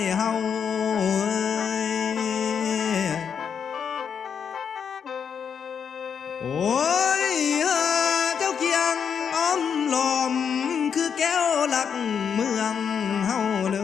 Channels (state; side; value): quieter; right; 7.2 dB